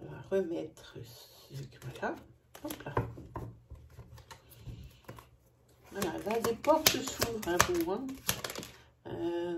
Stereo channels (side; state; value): both; identical; correlation 1.00